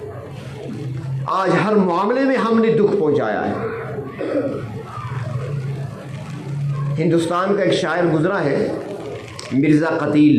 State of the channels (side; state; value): both; identical; correlation 1.00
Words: آج ہر معاملے میں ہم نے دکھ پہنچایا ہے۔ ہندوستان کا ایک شاعر گزرا ہے مرزا